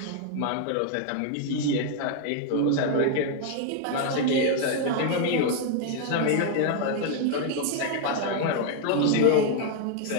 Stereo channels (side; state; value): both; different; correlation 0.00